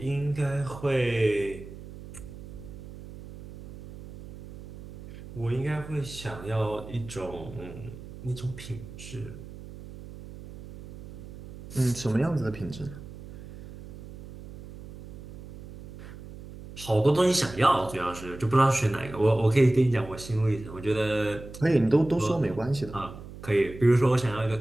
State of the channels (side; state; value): right; noise; hum, 14 dB below the sound